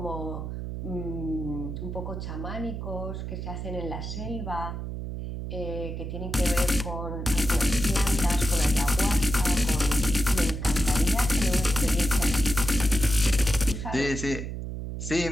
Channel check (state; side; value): noise; right; hum, 6 dB below the sound